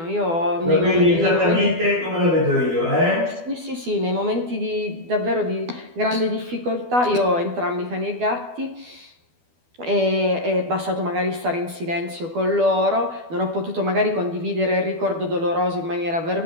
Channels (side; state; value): left; late; 12 ms